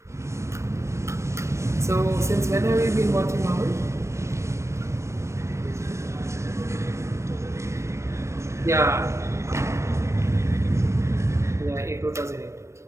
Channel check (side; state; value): left; late; 0.13 ms